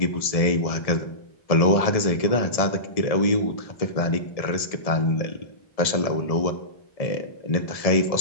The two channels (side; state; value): right; late; 1.7 ms